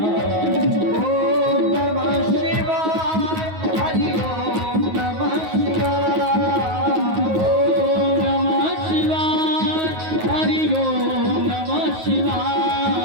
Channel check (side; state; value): left; late; 9.4 ms